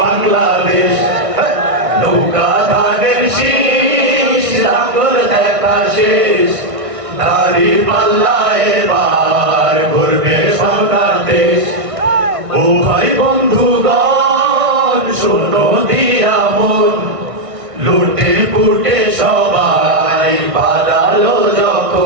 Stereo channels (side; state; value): left; late; 1.5 ms